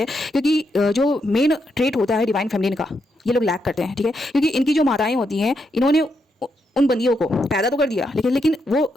क्योंकि जो मेन ट्रेट होता है डिवाइन फेमिनिन का, ये लोग लैक करते हैं ठीक है। क्योंकि इनकी जो माताएं होती हैं, इन्होंने उन बंदियों को पैदा तो कर दिया, लेकिन वो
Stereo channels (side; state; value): both; normal; correlation 0.81